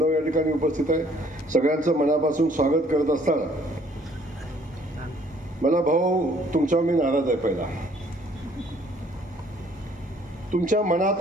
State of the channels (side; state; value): both; normal; correlation 0.60